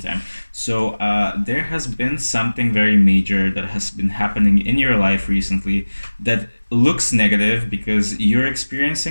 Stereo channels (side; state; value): both; inverted; correlation -1.00